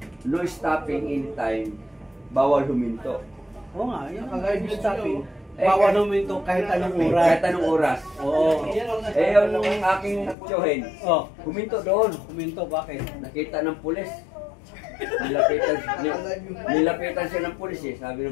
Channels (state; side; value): drops out; right; at 10.4 s